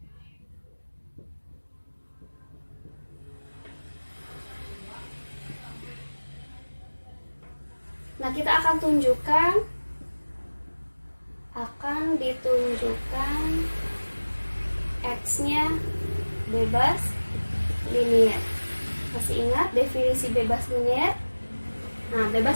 Nah, kita akan ditunjukkan X-nya bebas linier. Masih ingat definisi bebas linier? Nah,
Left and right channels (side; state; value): both; inverted; correlation -1.00